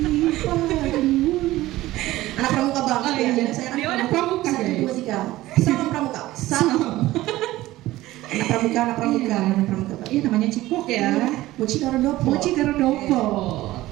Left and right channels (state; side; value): quieter; left; 16.7 dB